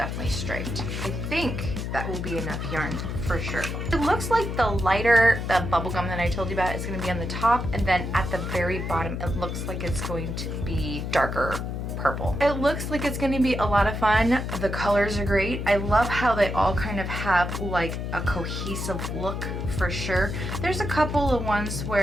straight. I think that will be enough yarn for sure. It looks like the lighter, the bubble gum that I told you about is going to be on the top, and then at the very bottom, it looks like it's going to be darker purple. It looks like it's going to be a lot of fun. The colors are great. I love how they all kind of have like a cohesive look for sure. There's a couple of ones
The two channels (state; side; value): noise; left; hum, 4 dB below the sound